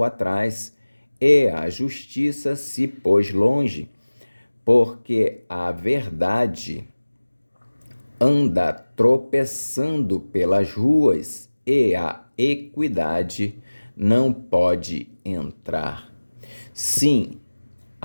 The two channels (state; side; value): inverted; both; correlation -1.00